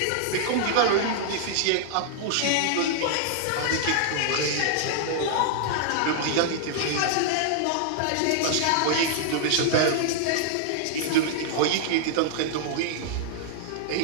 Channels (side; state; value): both; different; correlation -0.01